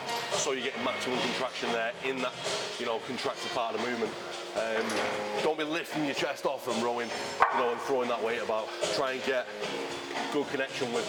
so you get maximum contraction there in that, you know, contracted part of the movement. Don't be lifting your chest off and rowing, you know, and throwing that weight about. Try and get good connection with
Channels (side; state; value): both; identical; correlation 1.00